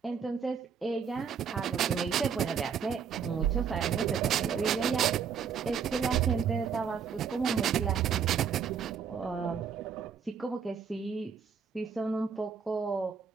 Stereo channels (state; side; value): quieter; left; 6.9 dB